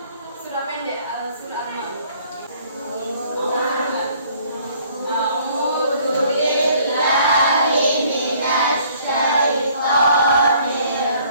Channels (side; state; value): both; inverted; correlation -0.59